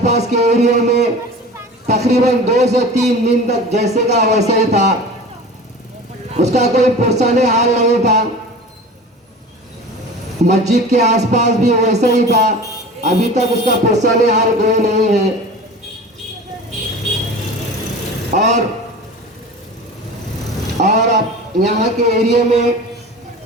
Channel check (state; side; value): normal; both; correlation 0.37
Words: के एरिया में तकरीबन 2 से 3 दिन तक जैसे का वैसा ही था, उसका कोई पुरसाने हाल नहीं था। मस्जिद के आसपास भी वैसा ही था, अभी तक उसका पुरसाने हाल कोई नहीं है। और अब यहाँ के एरिया में